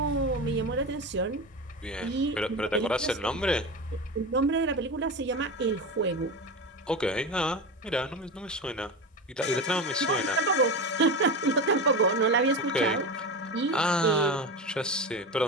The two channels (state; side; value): normal; both; correlation 0.23